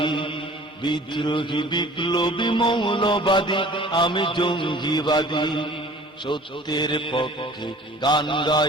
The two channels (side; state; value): both; normal; correlation 0.48